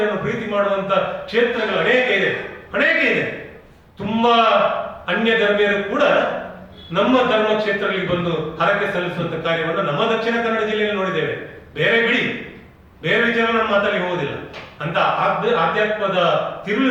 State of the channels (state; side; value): identical; both; correlation 1.00